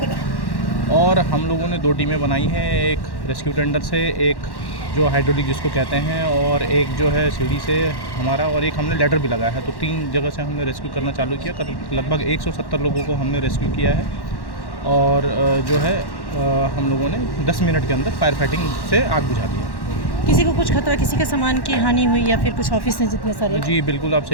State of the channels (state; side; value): late; right; 1.1 ms